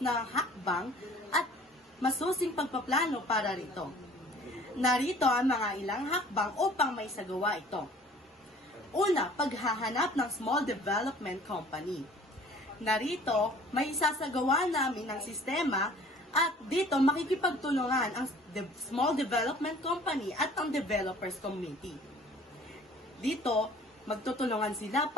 na hakbang at masusing pagpaplano para rito. Narito ang mga ilang hakbang upang may sagawa ito. Una, paghahanap ng small development company. Narito, may isasagawa namin ng sistema at dito makikipagtulungan ang small development company at ang developers committee. Dito, magtutulungan sila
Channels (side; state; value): both; normal; correlation 0.51